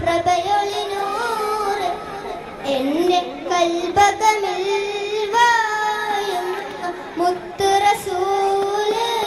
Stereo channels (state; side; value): identical; both; correlation 1.00